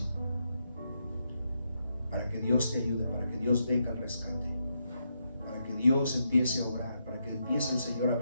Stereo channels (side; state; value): both; inverted; correlation -0.81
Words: para que Dios te ayude, para que Dios venga al rescate, para que Dios empiece a orar, para que empiece el Señor a